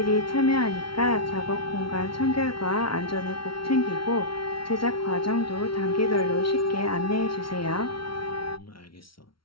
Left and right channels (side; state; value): right; late; 0.74 ms